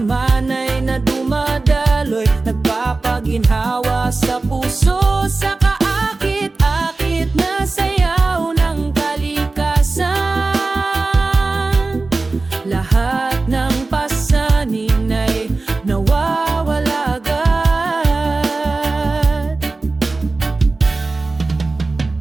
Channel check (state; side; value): quieter; left; 3.5 dB